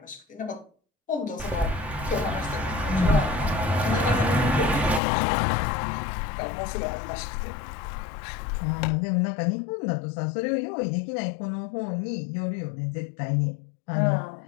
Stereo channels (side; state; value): right; drops out; at 5.0 s